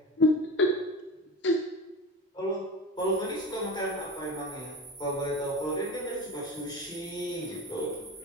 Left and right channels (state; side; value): normal; both; correlation 0.29